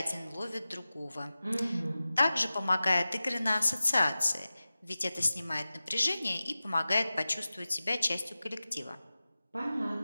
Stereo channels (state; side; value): inverted; both; correlation -0.96